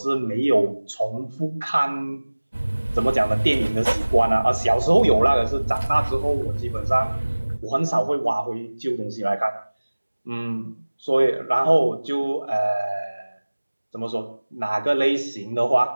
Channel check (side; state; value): both; inverted; correlation -1.00